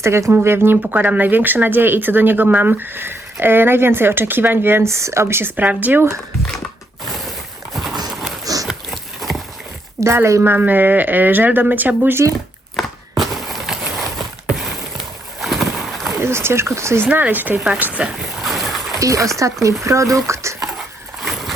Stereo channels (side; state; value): both; normal; correlation 0.76